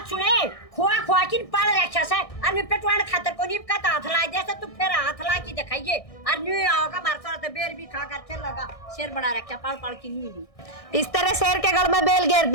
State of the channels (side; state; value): right; late; 1.6 ms